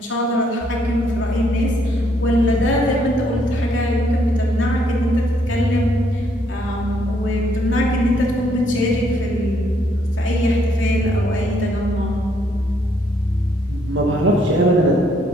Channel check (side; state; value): both; normal; correlation 0.70